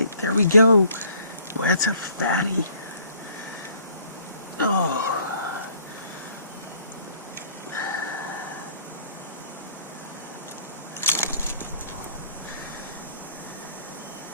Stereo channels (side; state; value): both; inverted; correlation -0.59